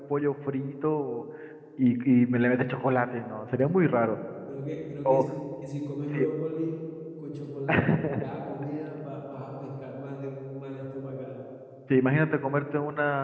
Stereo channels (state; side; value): identical; both; correlation 1.00